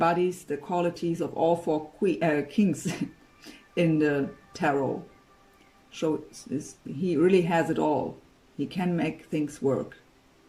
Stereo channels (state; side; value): identical; both; correlation 1.00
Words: the qualities of all four kings in the tarot. So he really has it all. He can make things work.